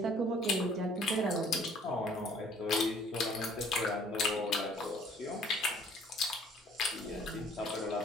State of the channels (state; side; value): normal; both; correlation 0.57